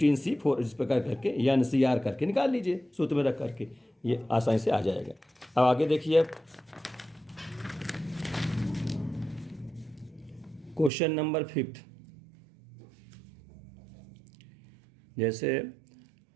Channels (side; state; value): left; drops out; at 10.9 s